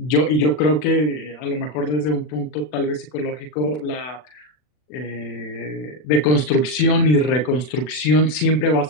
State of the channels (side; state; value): right; late; 40 ms